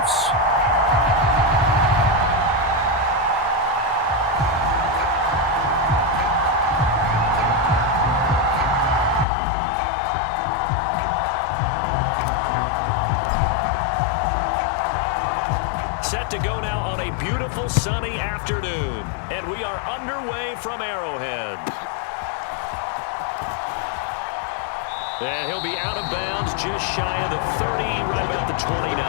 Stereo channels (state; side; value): drops out; right; at 9.2 s